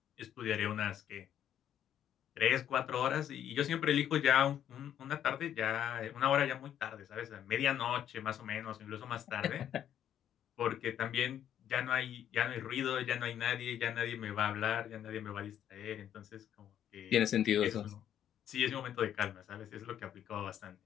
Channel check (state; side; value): quieter; right; 10.3 dB